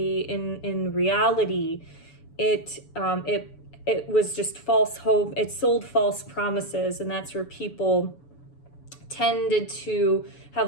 in reality, it was just false hope. It sold false promises, and that's where people tended to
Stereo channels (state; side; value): late; right; 7.0 ms